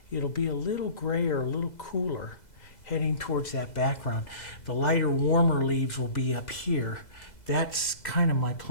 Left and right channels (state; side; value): late; right; 2.0 ms